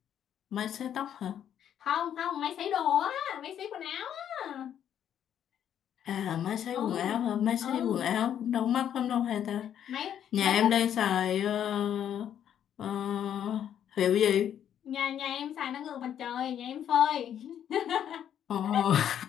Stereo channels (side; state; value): right; quieter; 9.7 dB